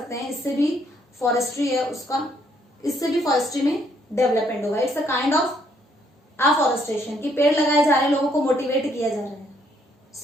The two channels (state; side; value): normal; both; correlation 0.69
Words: हैं। इससे भी फॉरेस्ट्री है उसका, इससे भी फॉरेस्ट्री में डेवलपमेंट होगा। It's a kind of afforestation कि पेड़ लगाए जा रहे हैं, लोगों को मोटिवेट किया जा रहा है।